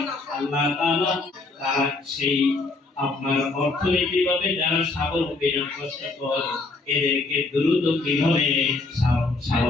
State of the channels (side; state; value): right; quieter; 3.5 dB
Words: আল্লাহ তাআলা তার সেই আপনার অর্থনৈতিকভাবে যারা স্বাবলম্বী না কষ্টকর, এদেরকে দ্রুত কিভাবে